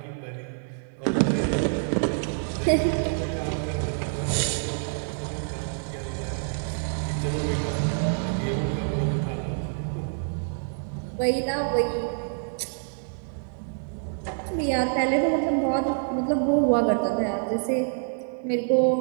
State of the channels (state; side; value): silent; left; digital silence